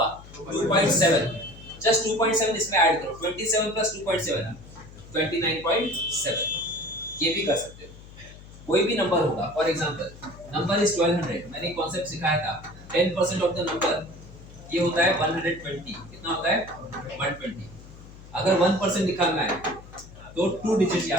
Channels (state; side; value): noise; left; hum, 18 dB below the sound